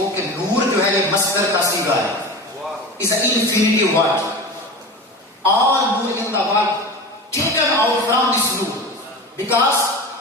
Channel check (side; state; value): both; normal; correlation 0.30